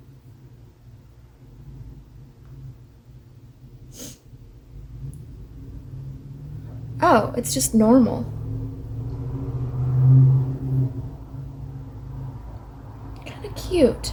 Oh, it's just normal. Kind of cute.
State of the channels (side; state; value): both; identical; correlation 1.00